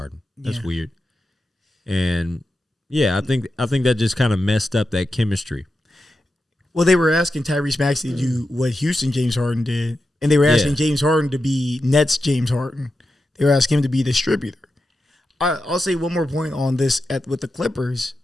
That's weird. And yeah, I think that just kind of messed up that chemistry. Well, they were asking Tyrese Maxey to do what Houston James Harden did, and they were asking James Harden to be Nets James Harden. They were asking him to be a distributor. I'll say one more point on this with the Clippers,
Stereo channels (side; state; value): both; normal; correlation 0.89